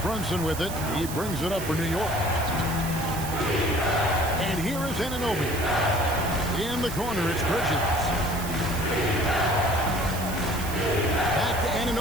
with it. He brings it up for New York. And here is Anunoby. In the corner, it's Bridges. Back to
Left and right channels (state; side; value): noise; right; hiss, 10 dB below the sound